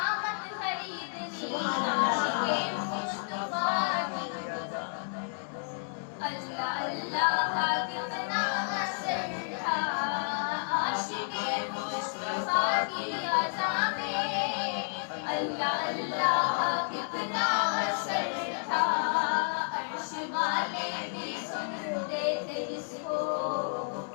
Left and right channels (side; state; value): right; silent; 57 dB below the other